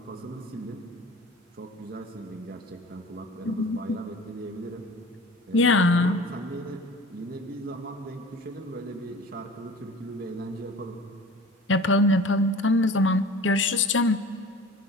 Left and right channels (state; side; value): normal; both; correlation 0.41